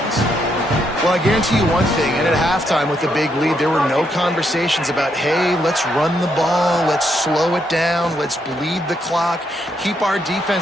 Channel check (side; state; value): both; normal; correlation 0.77